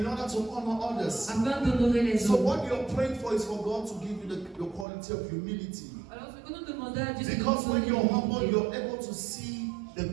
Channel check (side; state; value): left; drops out; at 4.9 s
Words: order to honor others. afin d'honorer les So autres. what you're praying for is for God to give you the quality of humility. Alors ce que nous demandons à Dieu, c'est de Because nous when donner you're humble, l'humilité. you're able to see the